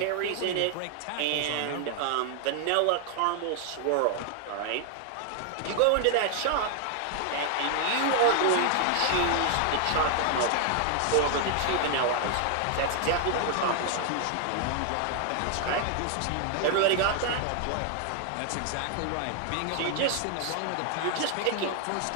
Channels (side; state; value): both; different; correlation 0.00